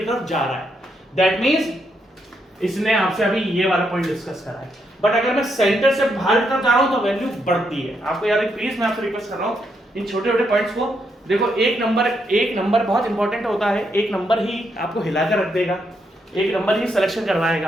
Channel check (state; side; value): normal; both; correlation 0.78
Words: तरफ जा रहा है, दैट मींस इसने आपसे अभी ये वाला पॉइंट डिस्कस करा है। बट अगर मैं सेंटर से बाहर की तरफ जा रहा हूं तो वैल्यू बढ़ती है। आपको यार प्लीज मैं आपसे रिक्वेस्ट कर रहा हूं इन छोटे छोटे पॉइंट्स को देखो। एक नंबर बहुत इंपॉर्टेंट होता है, एक नंबर ही आपको हिलाकर रख देगा, एक नंबर ही सिलेक्शन